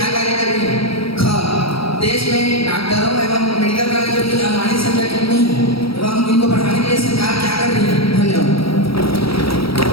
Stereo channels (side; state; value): right; late; 0.75 ms